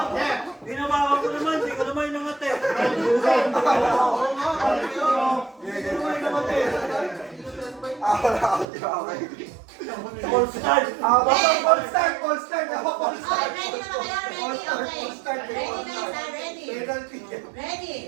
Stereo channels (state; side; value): drops out; left; at 8.7 s